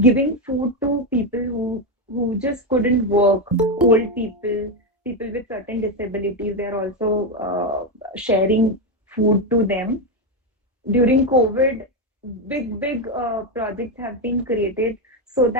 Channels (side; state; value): both; normal; correlation 0.08